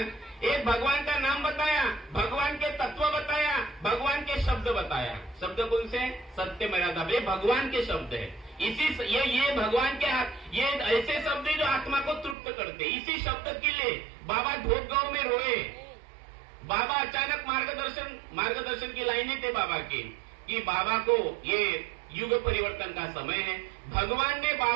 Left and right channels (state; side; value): drops out; left; at 12.4 s